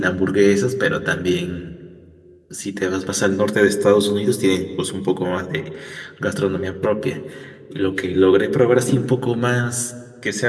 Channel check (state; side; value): identical; both; correlation 1.00